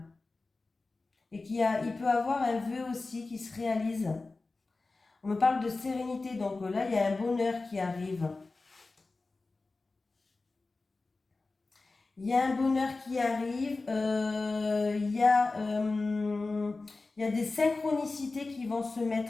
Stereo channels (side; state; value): right; quieter; 3.6 dB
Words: Et il peut avoir un vœu aussi qui se réalise. On me parle de sérénité, donc là, il y a un bonheur qui arrive. Il y a un bonheur qui arrive, il y a des synchronicités qui vont se